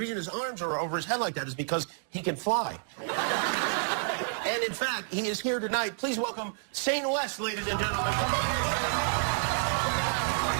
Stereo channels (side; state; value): left; silent; digital silence